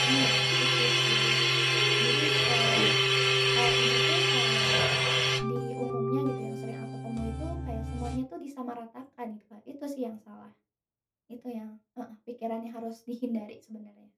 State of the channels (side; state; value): both; identical; correlation 1.00